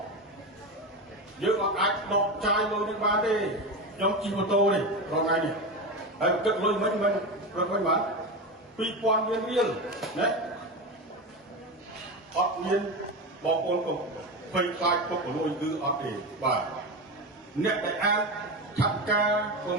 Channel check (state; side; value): normal; both; correlation 0.20